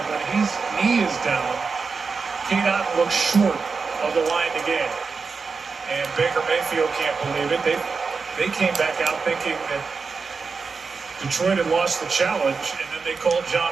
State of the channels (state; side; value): quieter; left; 4.8 dB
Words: when his knee is down, Cade Otton looks short of the line to gain. And Baker Mayfield can't believe it. They came back out thinking that Detroit had lost the challenge, and then they called